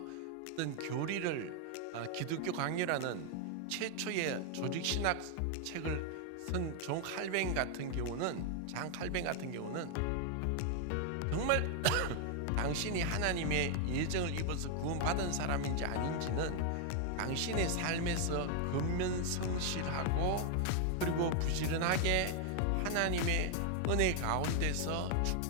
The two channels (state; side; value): different; both; correlation 0.00